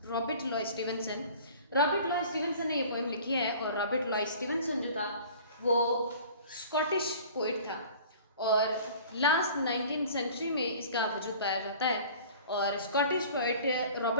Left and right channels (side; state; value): both; inverted; correlation -0.46